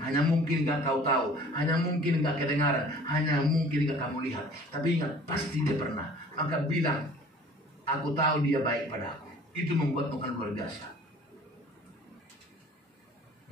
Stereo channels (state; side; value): normal; both; correlation 0.49